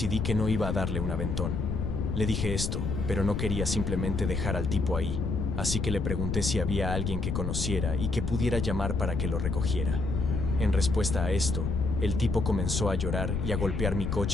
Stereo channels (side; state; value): left; noise; rumble, 1 dB below the sound